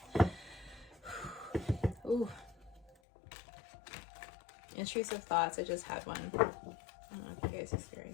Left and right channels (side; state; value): right; drops out; at 3.0 s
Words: Ooh. Intrusive thoughts. I just had one. I don't know if you guys